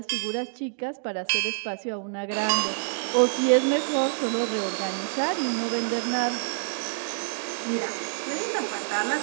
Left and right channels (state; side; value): silent; left; digital silence